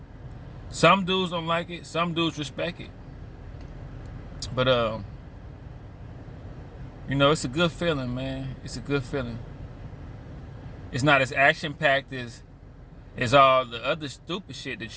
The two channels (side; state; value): both; identical; correlation 1.00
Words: Some dudes don't like it. Some dudes respect it. But it's a good feeling, man. It's a good feeling. It's not as action-packed as all the other stupid shit that